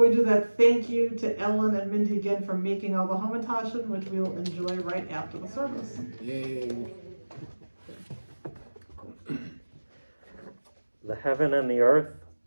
we do that, thank you to Ellen and Mindy again for making all the hamantashen, which we'll enjoy right after the service. Yay. The heaven and the earth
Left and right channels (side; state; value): both; inverted; correlation -1.00